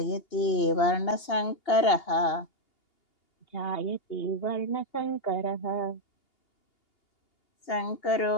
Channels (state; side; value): late; right; 2.8 ms